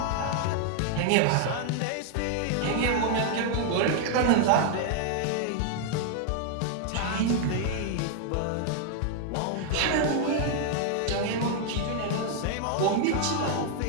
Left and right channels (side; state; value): both; different; correlation 0.00